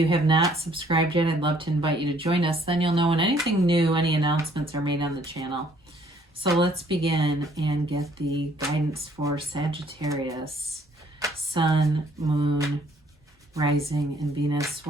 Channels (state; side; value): normal; both; correlation 0.62